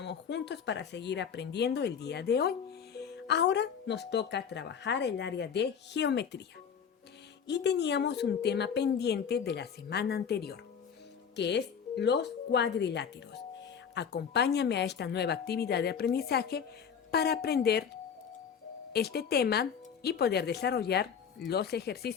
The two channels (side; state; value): right; quieter; 7.2 dB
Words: juntos para seguir aprendiendo el día de hoy. Ahora nos toca trabajar el área de geometría. Y teníamos un tema pendiente de la semana anterior, que es los cuadriláteros. Acompáñame a esta nueva actividad de aprendizaje para aprender este tema y poder desarrollar los